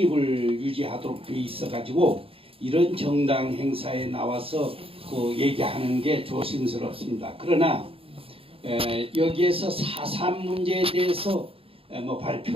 유지하도록 돼 있어 가지고 이런 정당 행사에 나와서 그 얘기하는 게 조심스럽습니다. 그러나 여기에서 4.3 문제에 대해서 뭐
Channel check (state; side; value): late; left; 0.27 ms